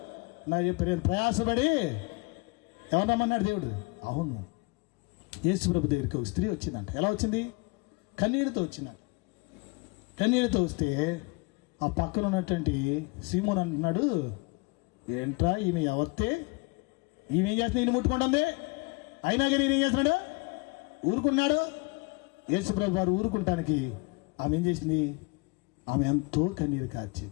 నా చెప్పారు ప్రయాసపడి ఎవరు రమ్మన్నాడు దేవుడు? అవును, యేసు ప్రభు దగ్గరికి ఒక స్త్రీ వచ్చిందంట. ఎలా వచ్చింది? కన్నీళ్ళతో వచ్చిందంట. కన్నీళ్ళతో వస్తే ఆ పక్కన ఉన్నటువంటి సీమోన్ అంటున్నాడు, ఏంట్రా ఈమె ఎవరితే? ఈమె ఏం చేస్తుంది? ఈయన ముట్టుకుంటుంది. అయినా కానీ ఈయన ఏం చేస్తున్నాడు? ఊరుకున్నాడు. యేసు ప్రభు వారు ఊరుకుంటానికి ఆమె ఏం చేసింది? ఆమె ఎంతో కన్నీరు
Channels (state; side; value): quieter; right; 27.6 dB